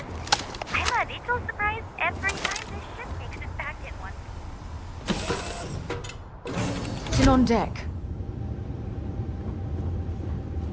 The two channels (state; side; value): identical; both; correlation 1.00